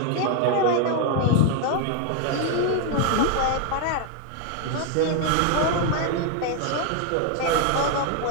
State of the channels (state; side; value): different; both; correlation 0.00